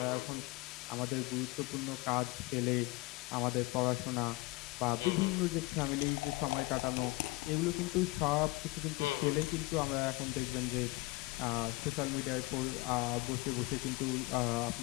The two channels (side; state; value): right; quieter; 22.2 dB